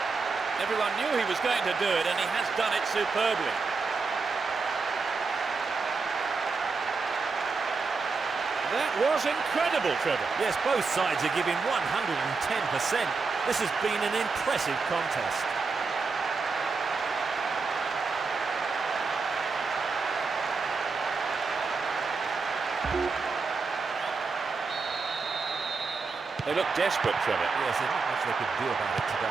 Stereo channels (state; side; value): quieter; left; 4.5 dB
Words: Everyone knew he was going to do it, and he has done it superbly. That was incredible, Trevor. Yes, both sides are giving 110%. This has been an impressive contest. They look desperate, Trevor. Yes, there's not much they could do about it